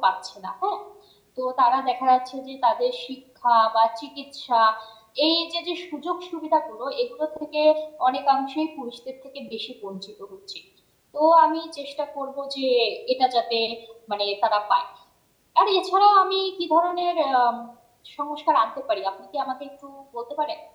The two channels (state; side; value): identical; both; correlation 1.00